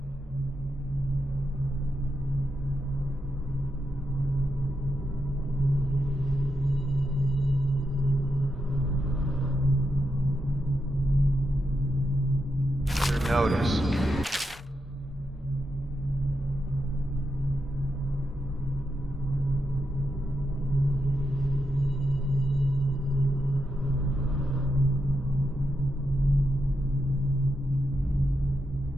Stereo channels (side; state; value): both; normal; correlation 0.85